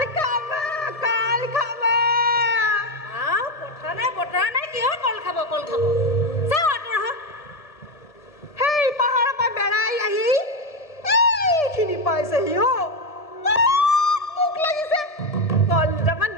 বতৰা নাই কিয় কল খাব চাও আঁতৰ হ সেই পাহাৰৰ পৰা বেৰাই আহি এইখিনি পাইছেহি মোক লাগিছে কল দুটামান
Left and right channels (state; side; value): late; right; 1.7 ms